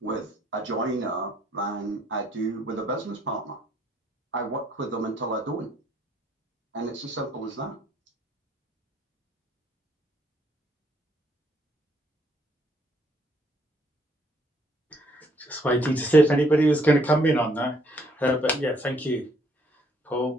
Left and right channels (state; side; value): normal; both; correlation 0.67